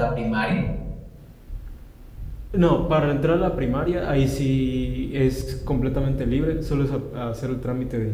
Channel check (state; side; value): identical; both; correlation 1.00